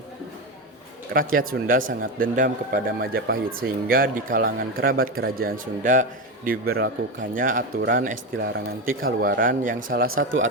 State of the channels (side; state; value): both; normal; correlation 0.15